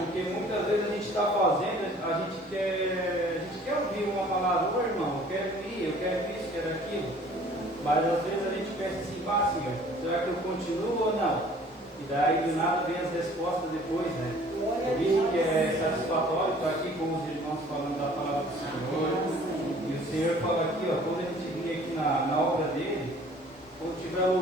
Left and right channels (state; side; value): normal; both; correlation 0.52